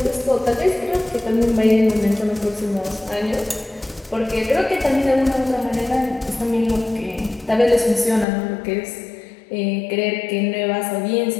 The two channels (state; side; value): drops out; right; at 8.2 s